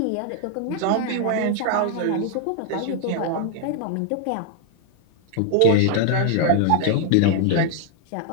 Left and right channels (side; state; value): both; different; correlation 0.00